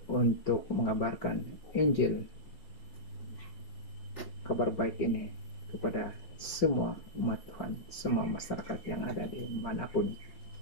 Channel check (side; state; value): right; late; 5.2 ms